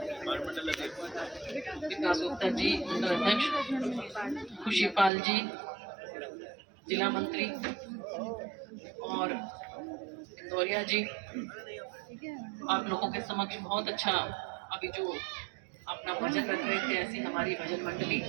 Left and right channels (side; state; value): left; drops out; at 5.1 s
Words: विकास गुप्ता जी मंडल अध्यक्ष, खुशीपाल जी जिला मंत्री और इंदौरिया जी, आप लोगों के समक्ष बहुत अच्छा अभी जो अपना भजन रख रहे थे, ऐसी हमारी भजन मंडली,